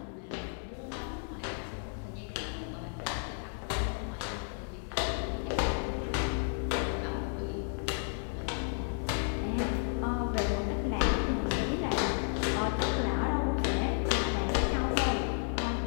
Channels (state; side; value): silent; right; 56 dB below the other